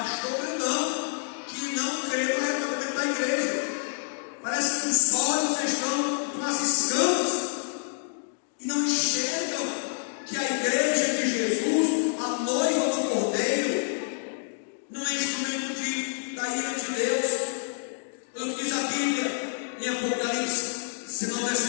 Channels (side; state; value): right; silent; digital silence